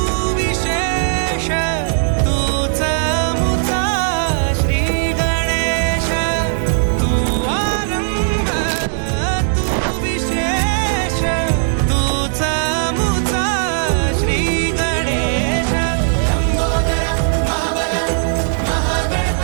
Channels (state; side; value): silent; left; digital silence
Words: विशेष, तूच मुचा श्री गणेश। तू आरंभ तू विशेष, तूच मुचा श्री गणेश। लंबोदर महाबल